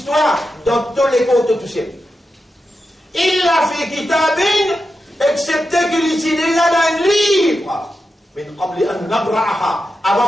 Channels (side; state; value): both; normal; correlation 0.89